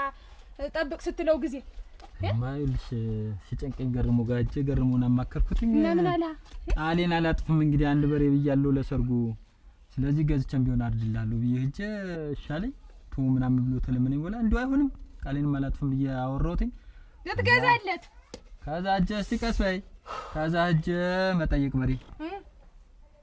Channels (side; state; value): both; identical; correlation 1.00